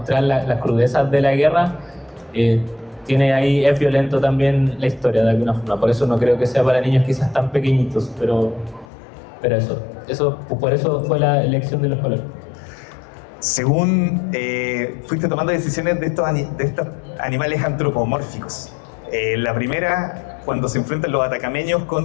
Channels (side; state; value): right; drops out; at 8.8 s